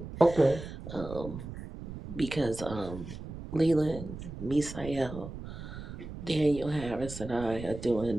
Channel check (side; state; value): right; noise; rumble, 10 dB below the sound